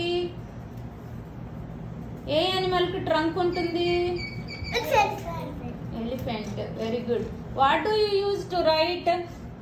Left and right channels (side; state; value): both; identical; correlation 1.00